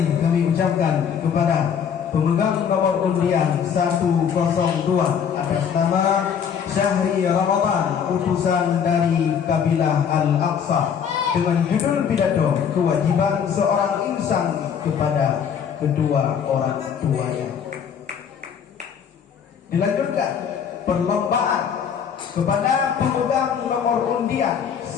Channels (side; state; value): right; quieter; 7.6 dB